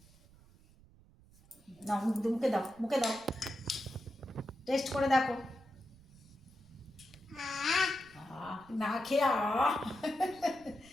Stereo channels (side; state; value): right; noise; rumble, 25 dB below the sound